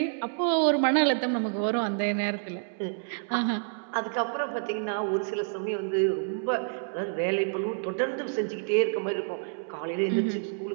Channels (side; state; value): left; silent; digital silence